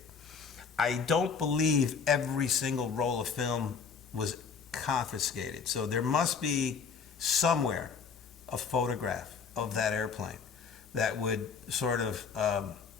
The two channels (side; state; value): right; quieter; 5.9 dB